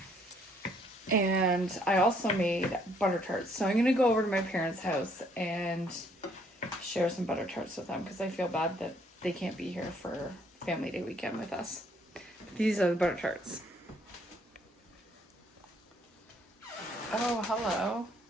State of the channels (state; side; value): normal; both; correlation 0.66